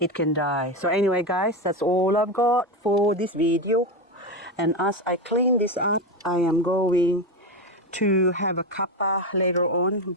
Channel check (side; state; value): both; normal; correlation 0.15